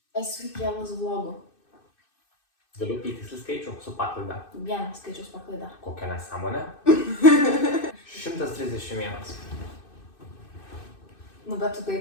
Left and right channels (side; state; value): right; late; 2.6 ms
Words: esu įkėlus vlogų? Galiu įtiksliai skaičių su paklaida. Vienas skaičius paklaida. Kokia nesąmonė? 131. Nu, bet tu tai